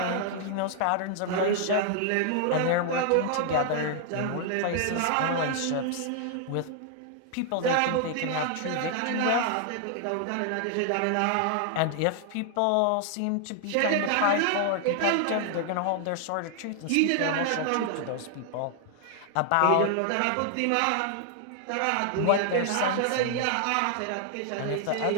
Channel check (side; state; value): both; different; correlation 0.00